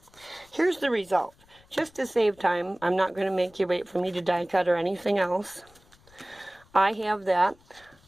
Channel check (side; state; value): left; noise; rumble, 29 dB below the sound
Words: Here's the result. Just to save time, I'm not going to make you wait for me to die cut or anything else. I have that.